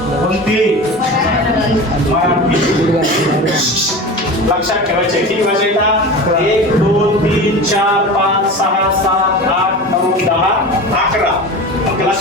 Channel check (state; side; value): normal; both; correlation 0.31